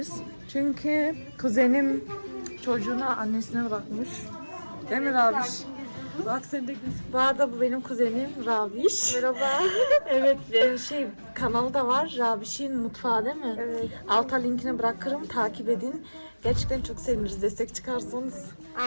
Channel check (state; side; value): inverted; both; correlation -1.00